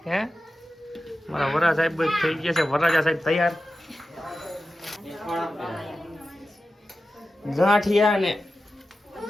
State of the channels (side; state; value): both; normal; correlation 0.93